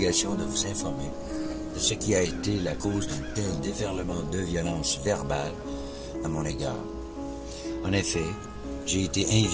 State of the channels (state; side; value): identical; both; correlation 1.00